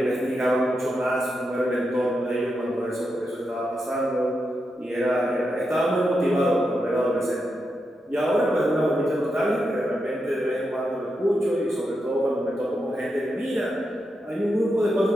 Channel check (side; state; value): both; normal; correlation 0.86